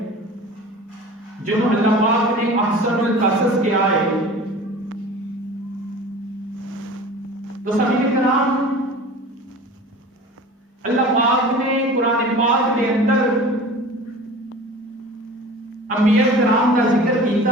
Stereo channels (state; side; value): normal; both; correlation 0.39